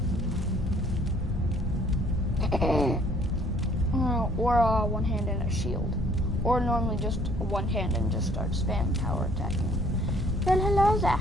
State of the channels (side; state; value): both; normal; correlation 0.60